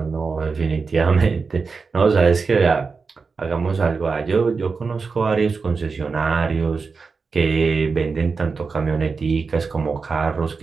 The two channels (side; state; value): left; quieter; 4.7 dB